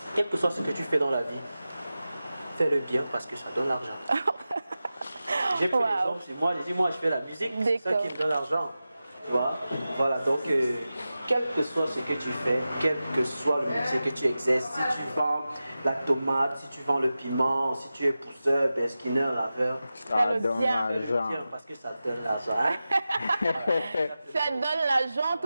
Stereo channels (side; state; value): both; inverted; correlation -0.94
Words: quel que soit ce que tu fais dans la vie, fais-le bien parce que ça donne l'argent. J'ai pris l'exemple chez moi, j'ai dit, moi, je fais la musique, c'est ça qui me donne l'argent. Tu vois? Voilà, donc, quel que soit ce que tu fais, quel que soit le métier que tu exerces, si tu vends la tomate, si tu vends le piment, si tu es pousseur, skinner, laveur, ça donne bien. l'argent. parce que ça donne l'argent. Hein? Ça donne l'argent,